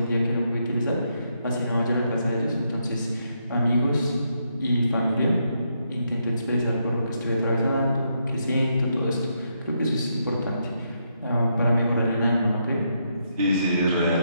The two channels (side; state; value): both; inverted; correlation -0.79